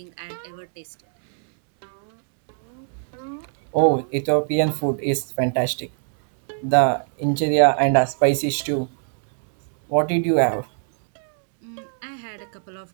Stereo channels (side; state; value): left; silent; 64 dB below the other